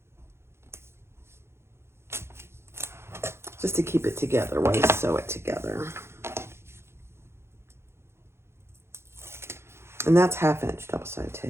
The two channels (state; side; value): late; left; 0.12 ms